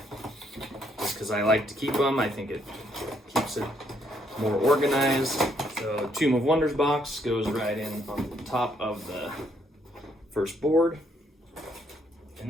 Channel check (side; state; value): both; normal; correlation 0.71